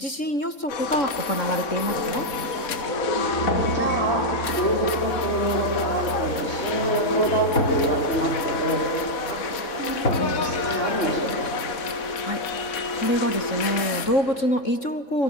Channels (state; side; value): late; right; 3.6 ms